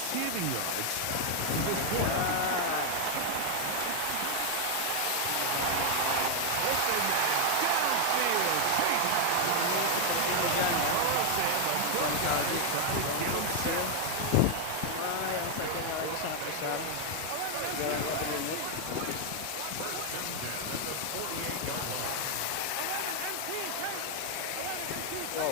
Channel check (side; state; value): both; different; correlation 0.00